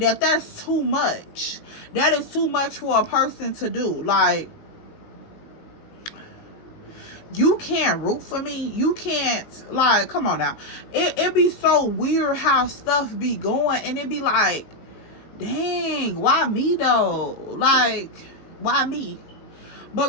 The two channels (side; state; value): right; late; 18 ms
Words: too much. That is too much for a person to do. Like, you can't root for me. You can't, like, come on now. It be so weird how stuff be going, and it be like, dang, why me though? Like, why me? But